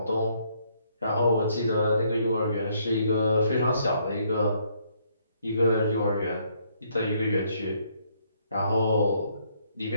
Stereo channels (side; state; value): both; inverted; correlation -0.69